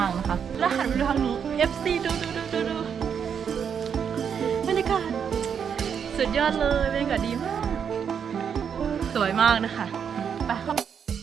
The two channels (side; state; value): left; quieter; 7.4 dB